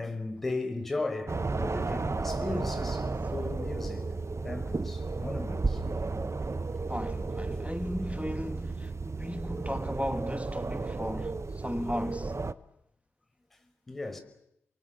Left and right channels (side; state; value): both; normal; correlation 0.92